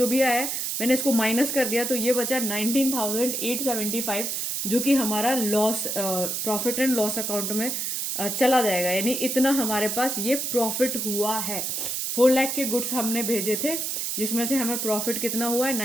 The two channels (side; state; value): right; noise; hiss, 2 dB below the sound